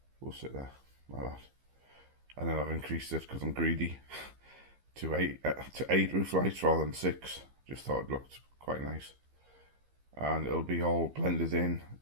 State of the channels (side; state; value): left; late; 15 ms